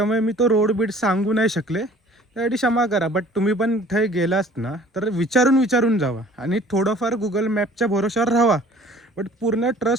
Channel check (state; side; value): normal; both; correlation 0.51